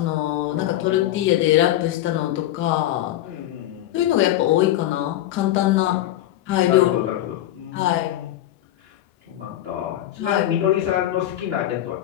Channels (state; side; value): quieter; right; 13.5 dB